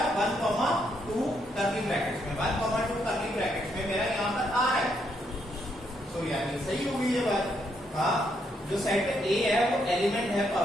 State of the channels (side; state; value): both; normal; correlation 0.76